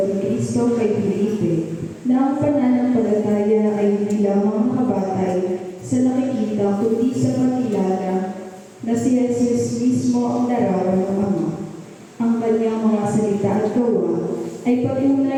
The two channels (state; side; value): identical; both; correlation 1.00